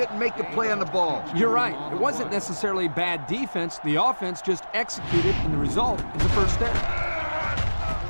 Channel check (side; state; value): both; inverted; correlation -1.00